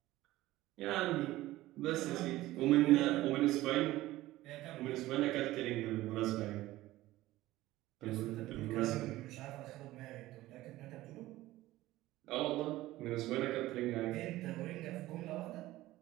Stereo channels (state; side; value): quieter; left; 16.7 dB